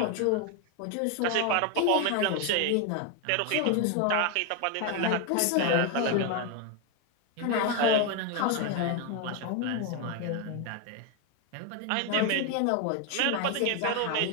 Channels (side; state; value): both; different; correlation 0.01